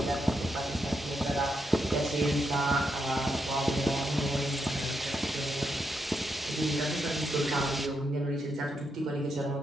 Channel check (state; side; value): normal; both; correlation 0.81